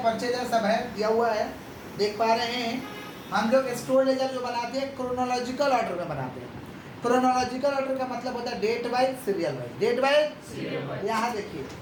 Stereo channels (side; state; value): both; identical; correlation 1.00